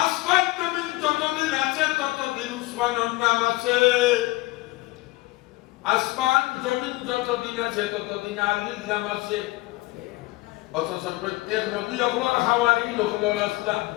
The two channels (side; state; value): right; quieter; 20.7 dB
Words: আসমান জমিন যতদিন আছে ততদিন উসমানের নাম আছে আসমান জমিন যতদিন আছে ততদিন আলীর নাম আছে অথচ প্রত্যেক নবী হলেন হাওয়ারি হলেন আসলাম